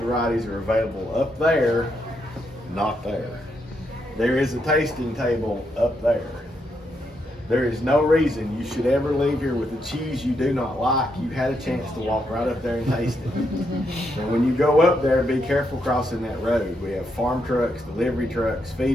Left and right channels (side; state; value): both; normal; correlation 0.79